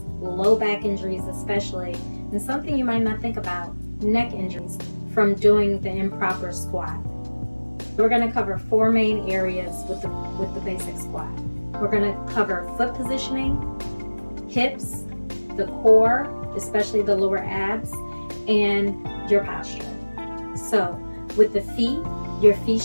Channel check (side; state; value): both; inverted; correlation -1.00